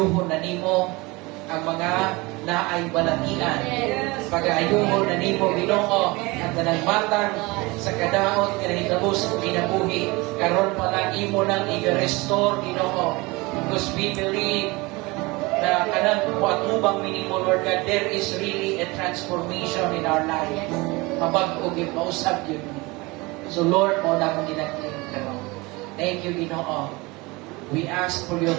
na nimo ang mga naay balatian. Pag-aayuhon na nimo, Ginoo, ang tanang matang sa kadaot, kinahitabos, kinabuhi, karon pa lang imo nang i-restore, Ginoo. Because we believe na kanang patubang minimo, Lord God, there is really a transformation in our life. Mabag-og yun, mausap yun. So Lord, mo na akong ginagling karon. Thank you, Ginoo. We ask for your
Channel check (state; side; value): quieter; left; 23.8 dB